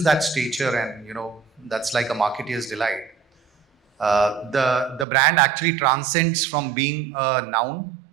that stature, and that's like a marketeer's delight, the brand actually transcends from being a noun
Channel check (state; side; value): drops out; left; at 5.1 s